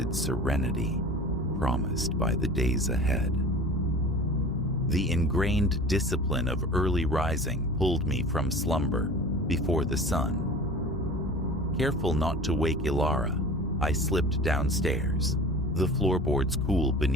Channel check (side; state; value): both; normal; correlation 0.39